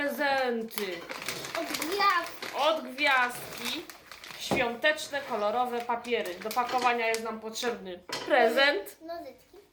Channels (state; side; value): identical; both; correlation 1.00